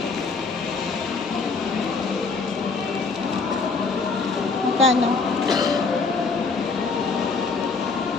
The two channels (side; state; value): right; quieter; 4.5 dB